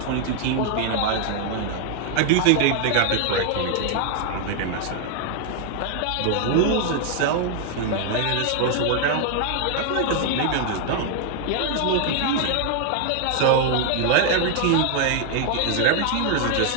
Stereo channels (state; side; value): different; both; correlation 0.00